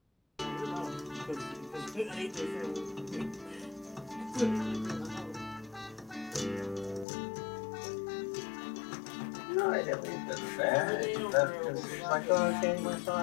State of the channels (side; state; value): right; drops out; at 7.1 s